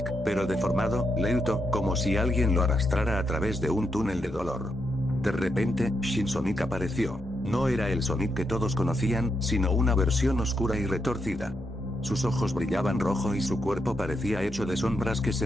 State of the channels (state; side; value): normal; both; correlation 0.82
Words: pero deformado, lento, como si alguien lo arrastrara a través de un túnel de dolor. De repente, Shin Sonic apareció. No era el Sonic que todos conocían, sino una versión oscura y retorcida. Sus ojos brillaban rojo y su cuerpo parecía hecho de sombras que